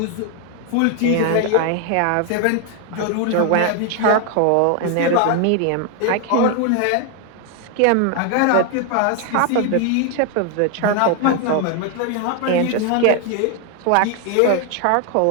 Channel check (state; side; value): different; both; correlation 0.01